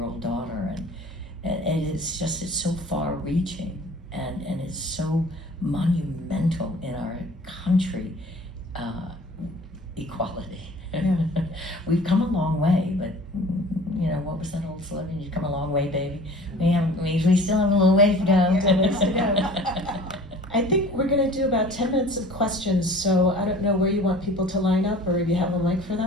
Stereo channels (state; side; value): normal; both; correlation 0.46